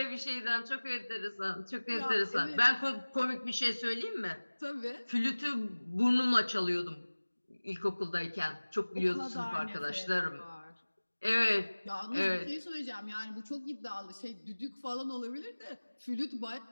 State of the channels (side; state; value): both; inverted; correlation -1.00